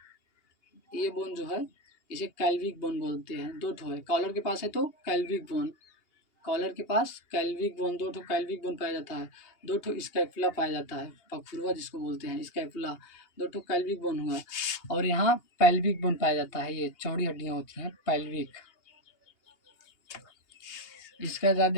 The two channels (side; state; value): right; late; 2.8 ms